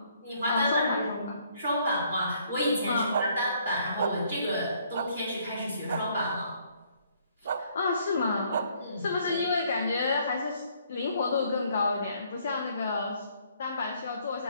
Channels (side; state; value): both; inverted; correlation -0.65